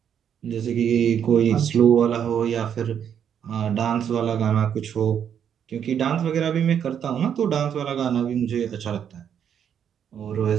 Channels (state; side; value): quieter; left; 8.6 dB